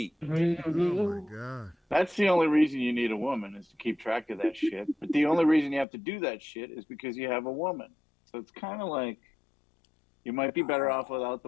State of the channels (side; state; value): right; drops out; at 5.9 s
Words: Oh my God. That's the only reason you need a woman is to keep track of that shit. But the only reason you have to do that shit is because you have a woman. So it's kind of like you might be better off without